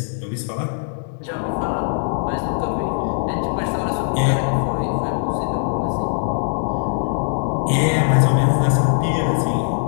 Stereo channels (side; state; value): right; silent; digital silence